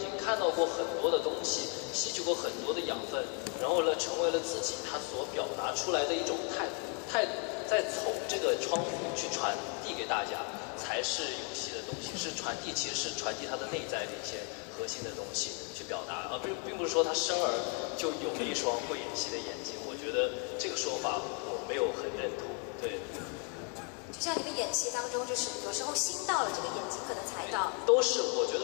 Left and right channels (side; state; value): right; quieter; 37.8 dB